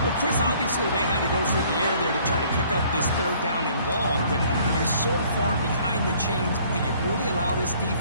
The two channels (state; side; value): inverted; both; correlation -0.58